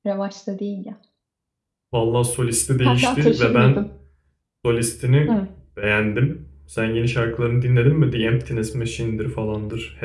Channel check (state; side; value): identical; both; correlation 1.00